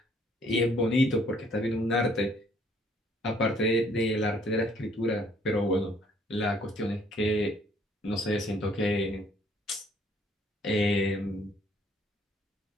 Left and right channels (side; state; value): both; normal; correlation 0.63